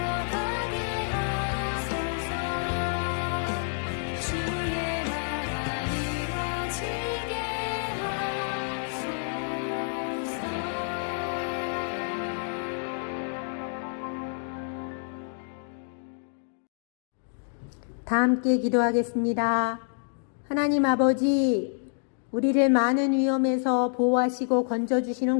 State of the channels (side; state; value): right; silent; 59 dB below the other